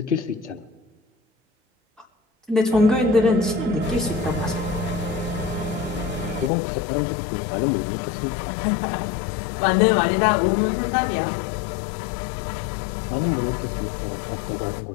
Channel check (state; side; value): drops out; right; at 6.5 s